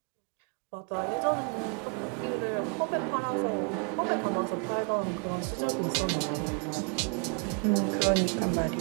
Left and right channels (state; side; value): quieter; left; 36.5 dB